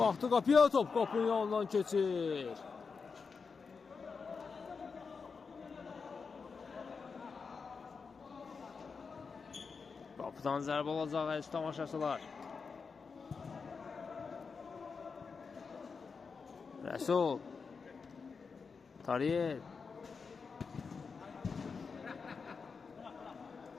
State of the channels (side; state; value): right; quieter; 5.2 dB